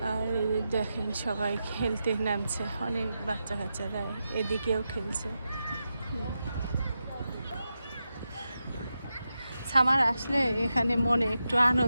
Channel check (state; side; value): inverted; both; correlation -0.89